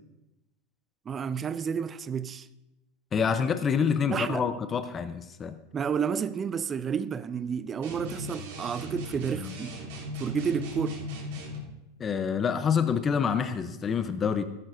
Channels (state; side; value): normal; both; correlation 0.62